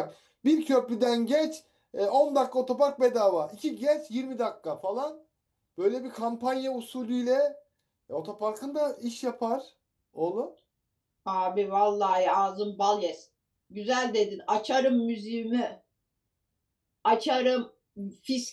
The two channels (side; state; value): both; identical; correlation 1.00